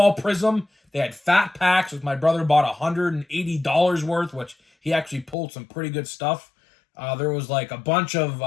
Prism. They had fat packs, which my brother bought $180 worth, which he actually pulled some pretty good stuff. There was a bunch of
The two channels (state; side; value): drops out; right; at 5.4 s